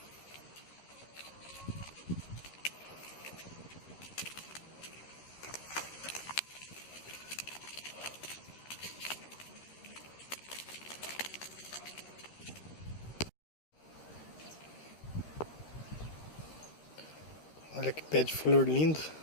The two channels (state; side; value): late; right; 13 ms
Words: Olha que pé de flor lindo.